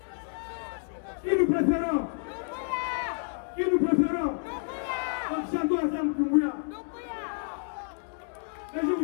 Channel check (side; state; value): right; silent; digital silence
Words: Qui nous préférons? Qui nous préférons? Donc, chantons ensemble Doumbouya. Mais je ne